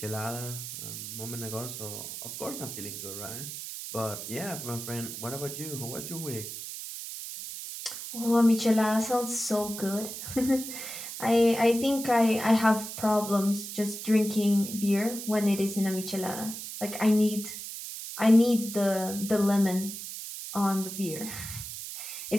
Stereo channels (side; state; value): right; noise; hiss, 8 dB below the sound